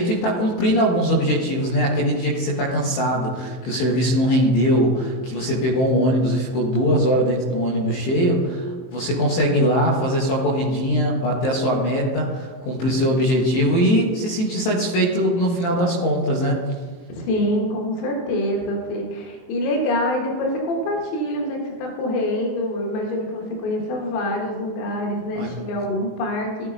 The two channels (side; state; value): right; late; 23 ms